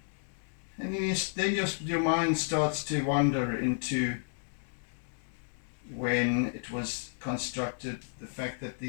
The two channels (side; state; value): right; silent; digital silence